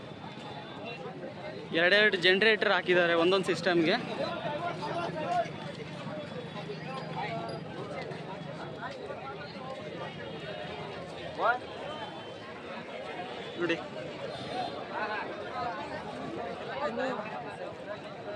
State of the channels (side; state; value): both; identical; correlation 1.00